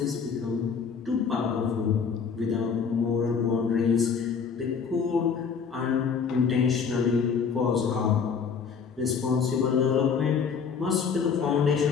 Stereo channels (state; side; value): quieter; right; 6.1 dB